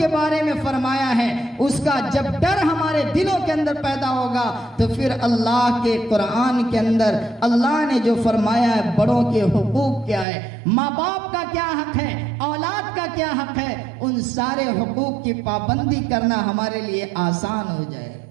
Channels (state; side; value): drops out; left; at 10.2 s